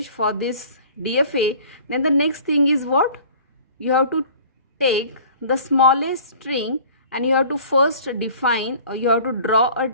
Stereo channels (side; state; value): both; inverted; correlation -0.47